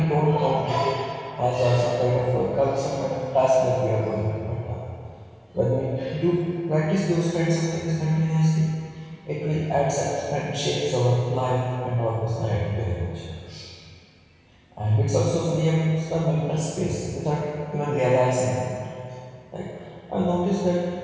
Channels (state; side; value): identical; both; correlation 1.00